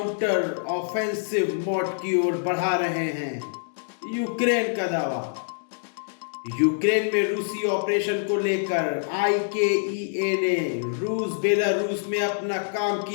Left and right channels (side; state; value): right; silent; digital silence